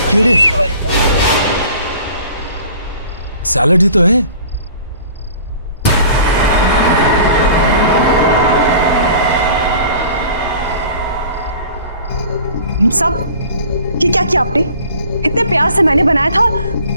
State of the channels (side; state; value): both; inverted; correlation -0.46